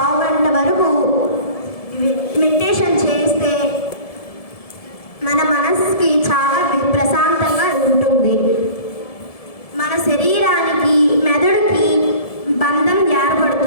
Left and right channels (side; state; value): right; late; 1.7 ms